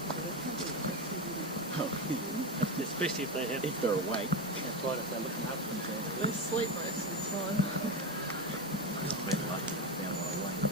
Especially if they have, If they're awake. that's right, if they're looking up themselves. They sleep most of the time. It's been lucky they found one awake.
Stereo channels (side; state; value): both; normal; correlation 0.16